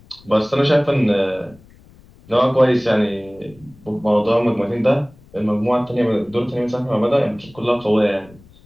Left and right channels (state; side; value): noise; left; rumble, 26 dB below the sound